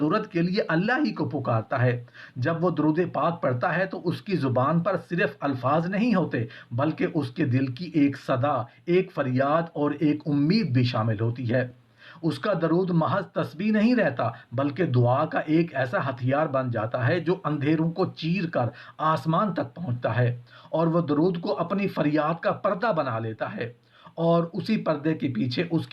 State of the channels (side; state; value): both; identical; correlation 1.00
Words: کے لیے اللہ ہی کو پکارتا ہے۔ جب وہ درود پاک پڑھتا ہے تو اس کی زبان پر صرف الفاظ نہیں ہوتے، بلکہ اس کے دل کی ایک صدا، ایک فریاد اور ایک امید بھی شامل ہوتی ہے۔ اس کا درود محض تسبیح نہیں رہتا، بلکہ دعا کا ایک ایسا ہتھیار بن جاتا ہے جو اندھیروں کو چیر کر آسمان تک پہنچتا ہے، اور وہ درود کو اپنی فریاد کا پردہ بنا لیتا ہے، اور اسی پردے کے پیچھے اس